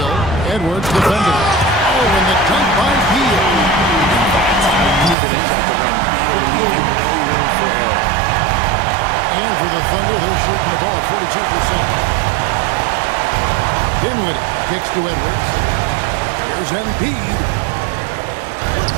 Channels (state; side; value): drops out; left; at 5.2 s